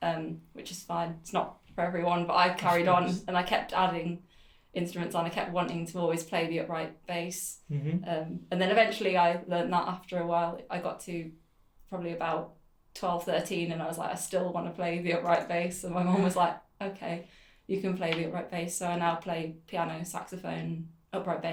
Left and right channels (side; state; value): both; identical; correlation 1.00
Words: which is fine. It's not for everyone, but I carried on and I kept adding instruments on. I kept wanting to always play the upright bass. Mm-hmm. And then eventually I learned that after a while. I got to probably about 12, 13 and I was like, I still want to play the upright bass. And my mum was like, okay, you can play the upright bass. So I now play piano, saxophone, upright